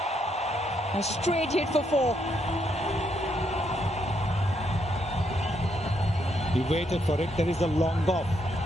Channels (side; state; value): both; normal; correlation 0.76